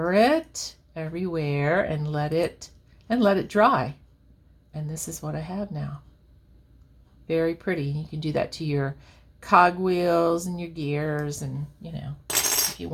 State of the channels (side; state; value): both; identical; correlation 1.00